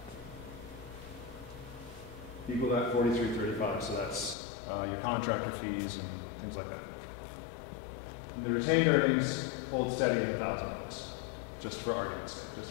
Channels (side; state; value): right; drops out; at 4.4 s